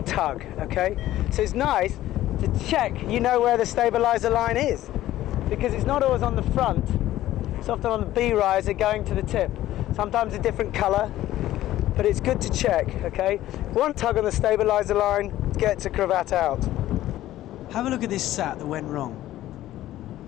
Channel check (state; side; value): quieter; right; 14.3 dB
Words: okay? So it's nice to check you know where the stabilizer line is, because it's not always on the front, it's often on the B riser going to the tip. Sometimes a different colour, but it's good to check, okay? One tug on the stabilizer line gets a cravat out. Have a look at this sat that went wrong.